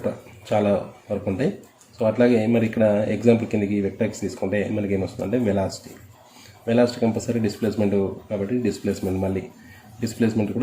చాలా వరకు ఉంటాయి. సో అట్లాగే మరి ఇక్కడ ఎగ్జాంపుల్ కిందకి వెక్టర్స్ తీసుకుంటే మనకి ఏమొస్తుందంటే వెలాసిటీ కంపల్సరీ డిస్ప్లేస్మెంట్ కాబట్టి డిస్ప్లేస్మెంట్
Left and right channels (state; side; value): identical; both; correlation 1.00